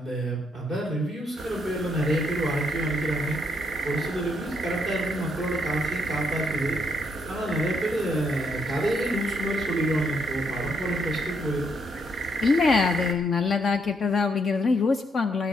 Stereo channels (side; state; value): both; normal; correlation 0.74